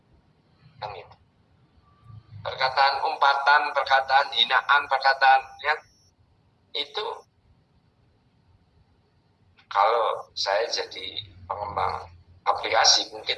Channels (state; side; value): identical; both; correlation 1.00